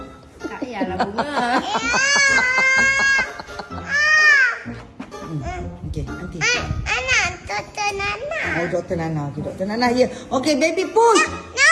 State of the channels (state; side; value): identical; both; correlation 1.00